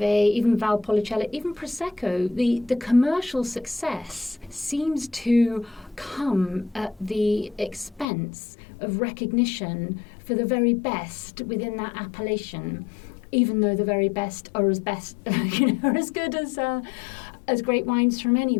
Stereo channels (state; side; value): drops out; right; at 8.1 s